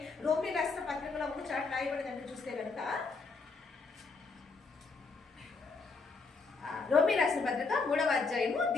రోమీ రాసిన పత్రికలో ఒక చాట్ రాయబడిందంటే చూస్తే కనుక రోమీ రాసిన పత్రిక 3వ అధ్యాయము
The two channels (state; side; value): quieter; right; 4.3 dB